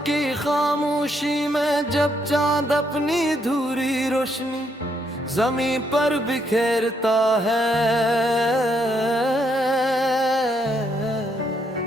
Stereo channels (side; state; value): both; normal; correlation 0.74